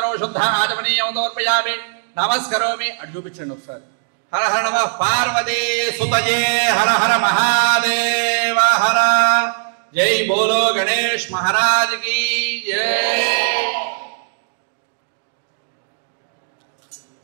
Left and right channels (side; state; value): left; silent; digital silence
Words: శుద్ధ ఆచమనీయం సమర్పయామి. నమస్కరోమి. అటు చూపించండి ఒకసారి. హర హర నమః పార్వతీ సుతయే హర హర మహాదేవ హర. జై బోలో గణేష్ మహారాజ్ కి జై.